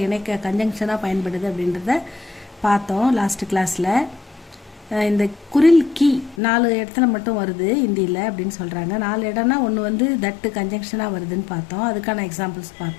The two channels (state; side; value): drops out; right; at 6.4 s